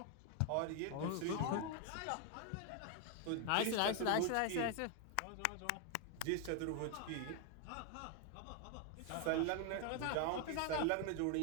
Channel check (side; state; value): both; different; correlation 0.01